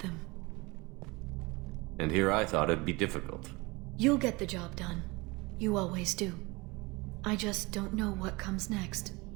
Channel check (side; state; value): left; quieter; 24.5 dB